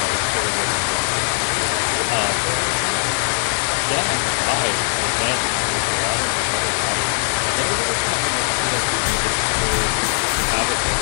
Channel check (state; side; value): silent; right; digital silence